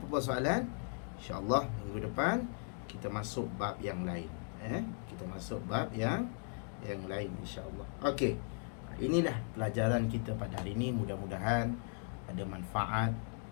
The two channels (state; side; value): silent; right; 53 dB below the other